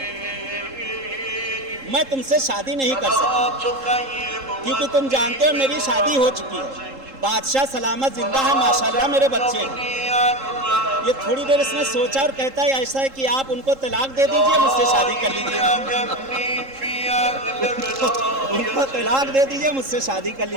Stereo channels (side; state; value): left; late; 3.7 ms